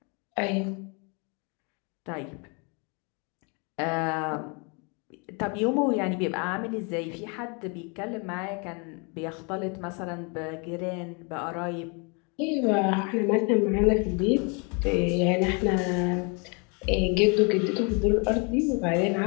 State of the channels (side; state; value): right; quieter; 33.5 dB